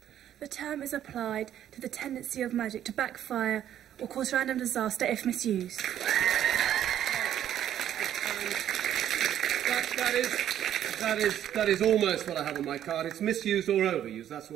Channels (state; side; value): quieter; left; 10.9 dB